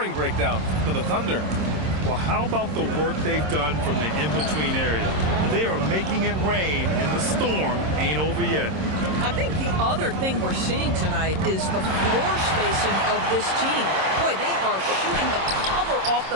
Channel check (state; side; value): late; left; 26 ms